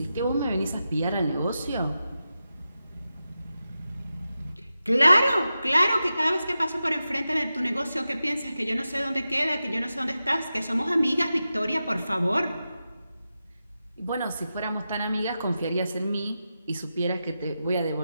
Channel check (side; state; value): both; inverted; correlation -0.91